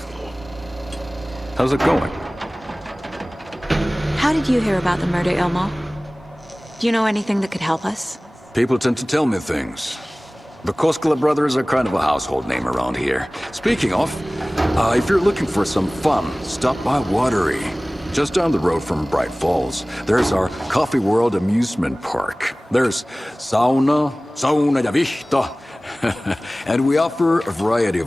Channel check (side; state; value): both; normal; correlation 0.98